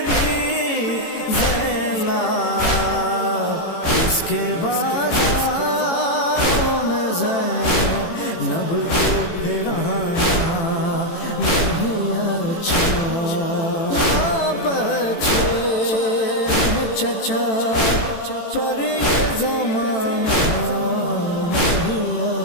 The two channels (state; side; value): late; right; 18 ms